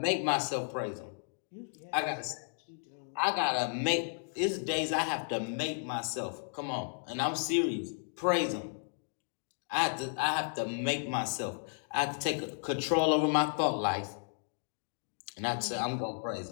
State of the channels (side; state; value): right; silent; digital silence